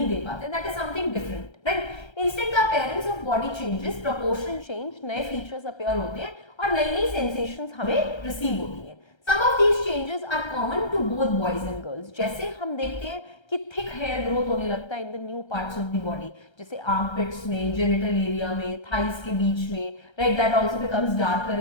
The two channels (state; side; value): late; right; 1.3 ms